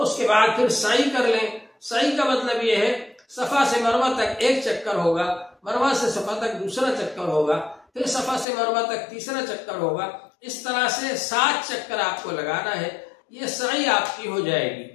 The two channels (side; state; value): right; drops out; at 8.5 s